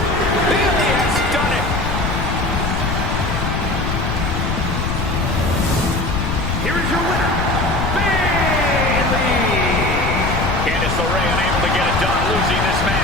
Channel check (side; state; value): left; noise; rumble, 1 dB below the sound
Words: Bayley has done it. Here is your winner, Bayley. Candice LeRae unable to get it done, losing this